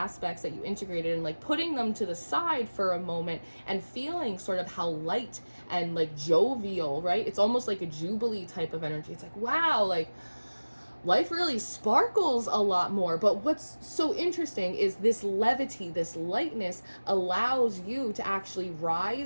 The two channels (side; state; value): both; inverted; correlation -1.00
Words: that you integrated and like putting them to the side for a moment and feeling sort of how light and like jovial, right? It's almost like a jubilee type of energy. It's like, wow, like life really sparkles a lot more. But what's so interesting is this levity, this lightness allows you to actually